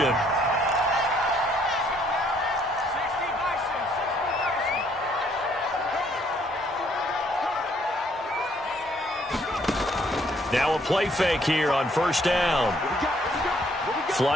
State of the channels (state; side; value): normal; both; correlation 0.66